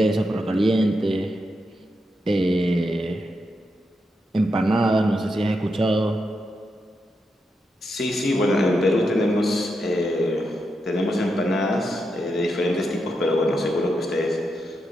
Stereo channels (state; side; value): normal; both; correlation 0.85